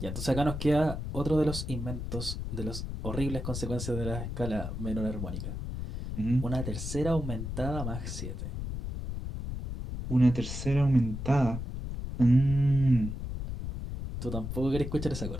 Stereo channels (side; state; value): left; noise; rumble, 5 dB below the sound